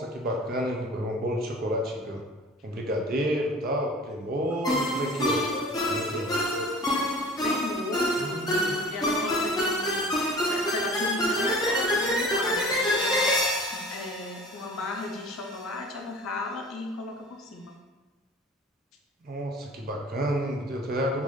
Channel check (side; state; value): both; normal; correlation 0.43